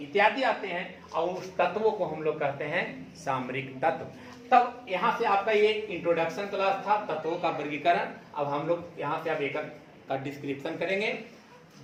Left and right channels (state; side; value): identical; both; correlation 1.00